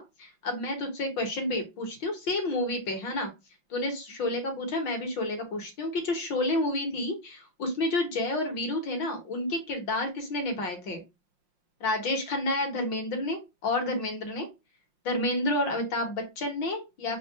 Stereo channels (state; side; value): late; right; 5.6 ms